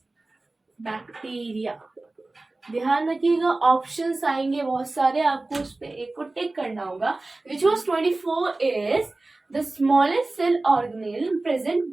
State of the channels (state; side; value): quieter; left; 3.1 dB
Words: बैक्टीरिया। ध्यान रखिएगा, ऑप्शंस आएंगे बहुत सारे, आपको उस पे एक को टिक करना होगा। Which was 24 is the smallest cell organelle present